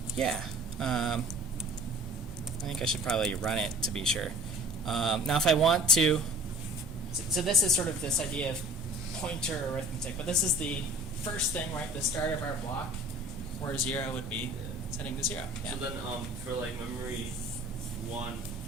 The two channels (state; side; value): normal; both; correlation 0.46